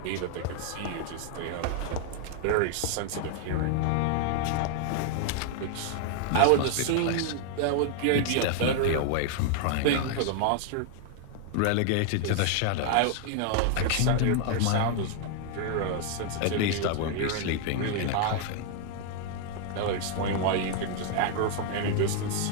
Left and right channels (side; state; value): both; different; correlation 0.00